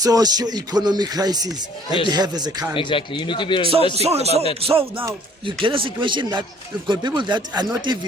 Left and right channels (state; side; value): normal; both; correlation 0.57